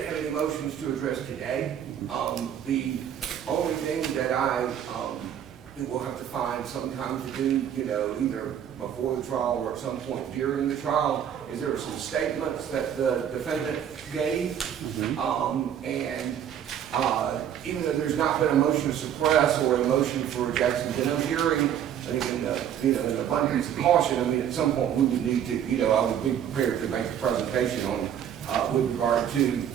any motions to address today. The only thing that I will have to find some time to do, either before the trial or at some point during the trial, is there were some statements that the defendant gave, and even though there's not been a motion to suppress or a motion for a Jackson-Denham hearing, I think in abundance of caution, at some point we would need to, I would be prepared to make a presentation on with regard to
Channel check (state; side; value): quieter; left; 9.5 dB